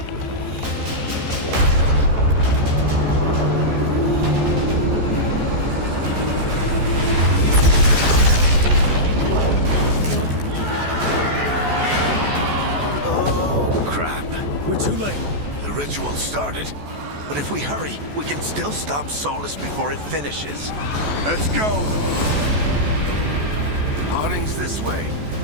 Oh, crap. We're too late. The ritual started. But if we hurry, we can still stop Solus before it finishes. Let's go! Harding's this way.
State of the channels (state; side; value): late; left; 14 ms